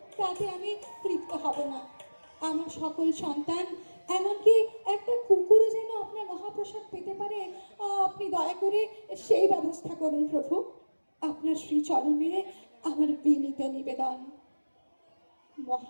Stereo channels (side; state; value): both; inverted; correlation -1.00